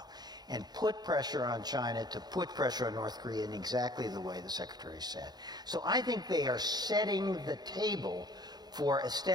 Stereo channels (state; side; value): late; left; 0.20 ms